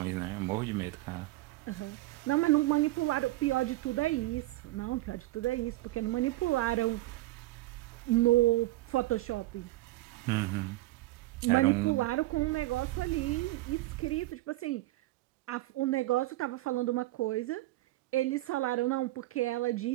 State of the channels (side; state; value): left; quieter; 18.0 dB